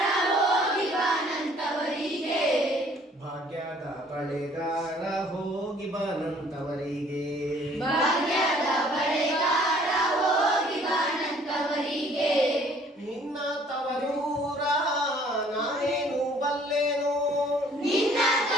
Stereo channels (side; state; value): both; normal; correlation 0.57